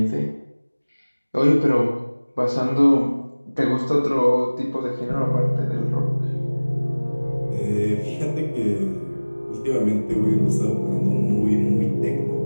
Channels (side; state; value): both; inverted; correlation -1.00